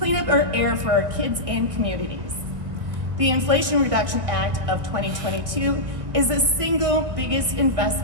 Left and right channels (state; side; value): late; left; 1.6 ms